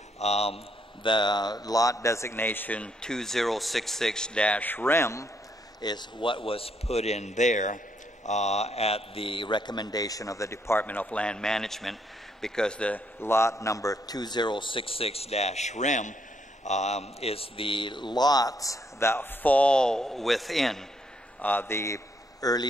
the lot designation 2066-REM is what was put in there at the recommendation of the Department of Land Management, because the lot number 2066-REM is the lots that fall within the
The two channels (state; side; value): normal; both; correlation 0.73